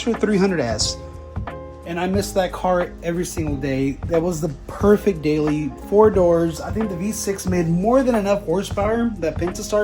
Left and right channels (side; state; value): both; identical; correlation 1.00